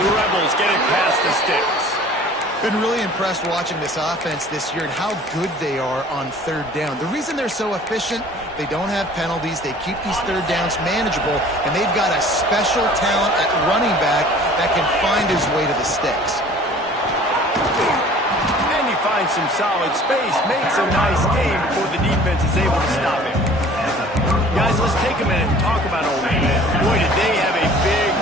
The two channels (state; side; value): normal; both; correlation 0.48